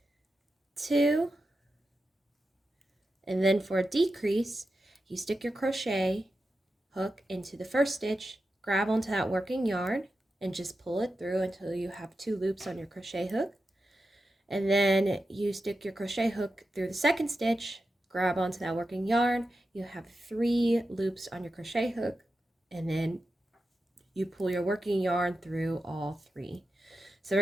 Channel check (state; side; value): normal; both; correlation 0.90